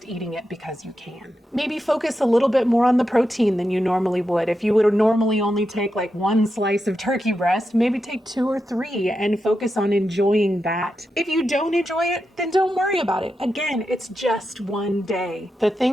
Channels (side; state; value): both; normal; correlation 0.87